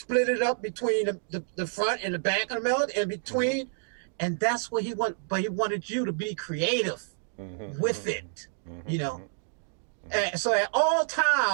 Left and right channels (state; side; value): silent; left; digital silence